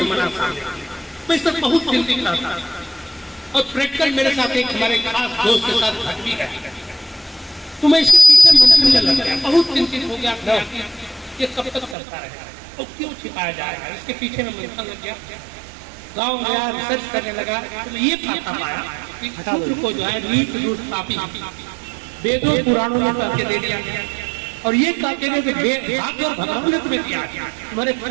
सामने, मैं इस पर बहुत चिंतित रहता था। और प्रैक्टिकल मेरे साथ एक हमारे खास दोस्त के साथ घट भी है, तो मैं इसके पीछे मंथन लग गया, बहुत चिंतित हो गया ये कब तक करता रहेगा और क्यों छिपाया जाएगा, इसके पीछे में मंथन लग गया। गाँव गया, रिसर्च करने लगा, तो ये पता पाया कि शूद्र को जो है नीच दुष्ट पापी वेदों पुराणों में करके दे दिया गया। और ये कहते हैं कि भाग्य और भगवान ने तुम्हें दिया, तुम्हारे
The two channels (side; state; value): left; drops out; at 12.0 s